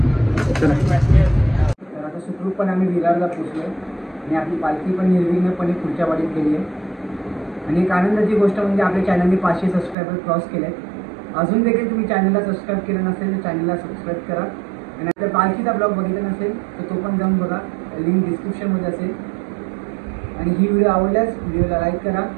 तर आता सुखरूपपणे आम्ही विरारला पोचलो आणि आपली पालखी पण निर्विघ्नपणे पुढच्या वाडीत गेली आहे. आणि एक आनंदाची गोष्ट म्हणजे आपल्या चॅनलने 500 सबस्क्रायबर क्रॉस केले आहेत. अजून देखील तुम्ही चॅनलला सबस्क्राईब केलं नसेल तर चॅनलला सबस्क्राईब करा. आणि जर पालखीचा ब्लॉग बघितला नसेल तर तो पण जाऊन बघा, लिंक डिस्क्रिप्शनमध्ये असेल. आणि ही व्हिडिओ आवडल्यास व्हिडिओला लाईक करा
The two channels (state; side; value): drops out; left; at 10.0 s